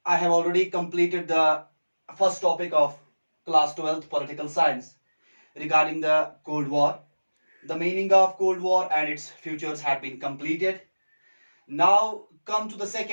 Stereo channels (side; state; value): both; inverted; correlation -1.00